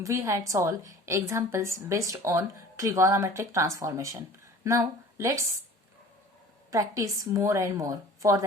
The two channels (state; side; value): normal; both; correlation 0.45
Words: we had solved examples based on trigonometric transformation. Now, let's practice more and more. For